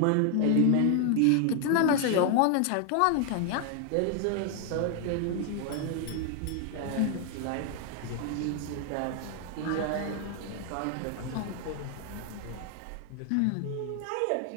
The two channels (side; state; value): both; different; correlation 0.00